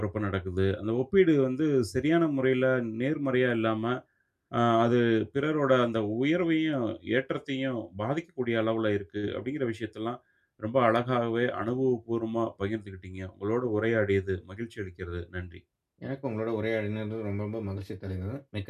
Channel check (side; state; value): both; identical; correlation 1.00